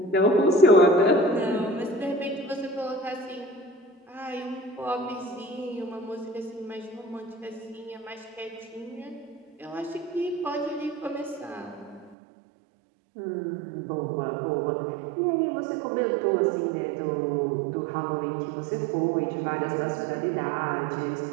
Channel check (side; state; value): left; drops out; at 12.2 s